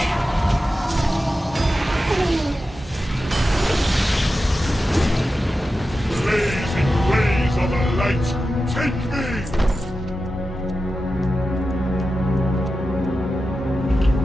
Blazing rays of the light, take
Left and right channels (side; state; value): both; normal; correlation 0.92